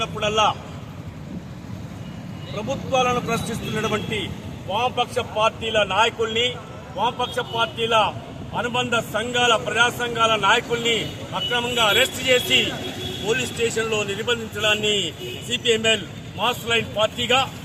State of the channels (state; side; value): identical; both; correlation 1.00